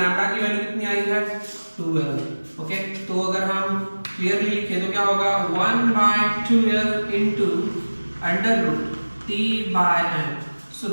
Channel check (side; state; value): both; inverted; correlation -1.00